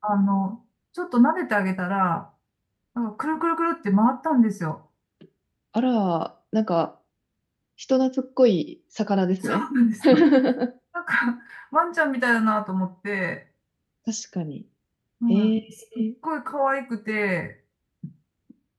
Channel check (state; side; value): identical; both; correlation 1.00